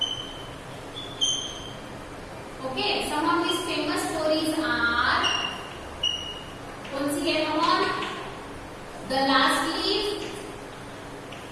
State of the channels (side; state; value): both; identical; correlation 1.00